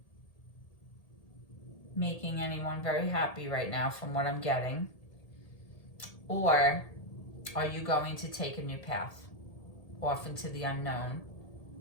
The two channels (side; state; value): right; late; 1.8 ms